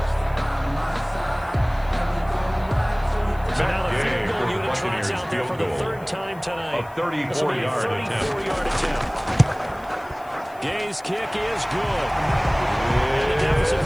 So now the field goal unit tries out there for the 3rd time tonight. A 34-yard attempt. 34-yard attempt. Gay's kick is good. And the deficit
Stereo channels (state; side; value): noise; left; hiss, 27 dB below the sound